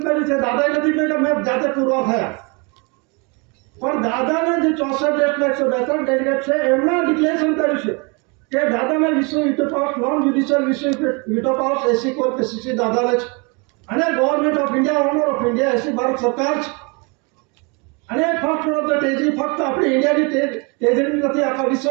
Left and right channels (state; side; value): quieter; left; 31.4 dB